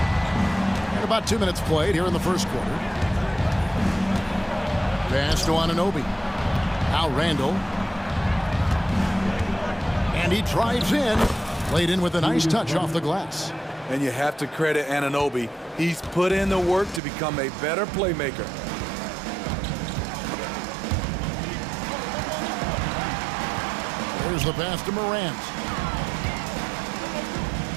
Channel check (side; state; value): left; drops out; at 17.0 s